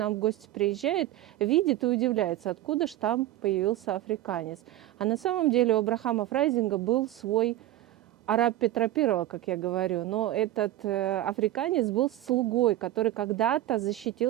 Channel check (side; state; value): left; quieter; 14.4 dB